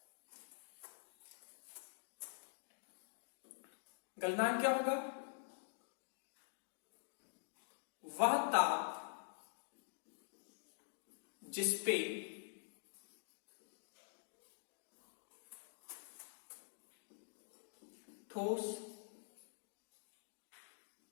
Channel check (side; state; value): right; silent; digital silence